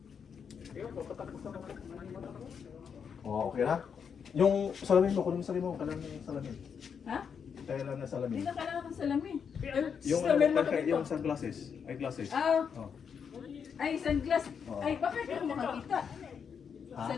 Oo, okay na? Yung salamin mo, kunin mo salamin mo. Kailangan yung salamin. Ha? Kailangan na salamin. Hindi na kailangan ng salamin. Yung salamin mo yung sunglasses. Ay, glasses. Ah, Oh. ay, sunglass. Oo. Ay, bakit hindi mo makakita? Ha?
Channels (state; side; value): quieter; right; 6.9 dB